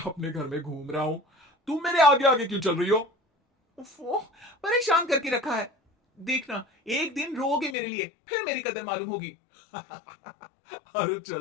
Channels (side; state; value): right; drops out; at 7.8 s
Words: अपने घर में घूम रहा हूं। तुम मेरे आगे आगे क्यों चल रही हो? उफ़ो, परेशान करके रखा है। देखना, एक दिन रोओगे मेरे लिए, फिर मेरी कदर मालूम होगी। अरे